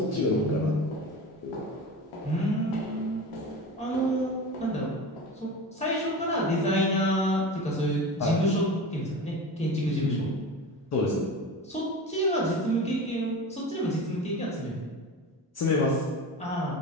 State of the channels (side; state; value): both; normal; correlation 0.30